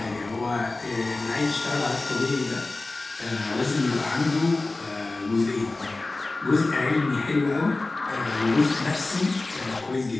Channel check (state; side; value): quieter; right; 3.2 dB